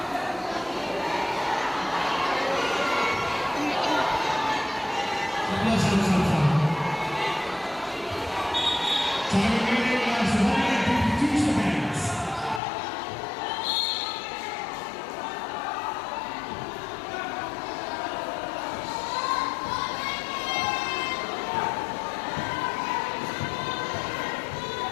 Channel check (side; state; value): right; drops out; at 12.6 s